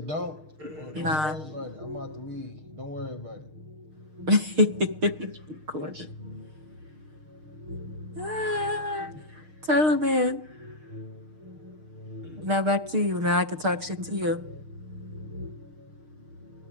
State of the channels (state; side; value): late; left; 6.5 ms